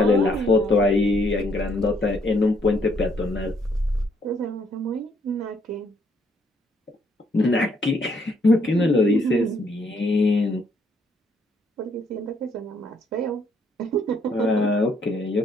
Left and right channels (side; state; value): both; normal; correlation 0.69